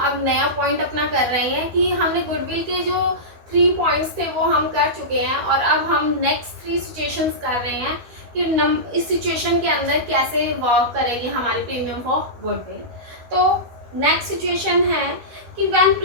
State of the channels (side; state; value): left; late; 13 ms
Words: नया पॉइंट अपना कर रहे हैं कि हमने गुडविल के जो 3 पॉइंट्स थे वो हम कर चुके हैं और अब हम नेक्स्ट 3 सिचुएशंस कर रहे हैं कि इस सिचुएशन के अंदर कैसे वर्क करेगी हमारी प्रीमियम फॉर गुडविल। तो नेक्स्ट सिचुएशन है कि when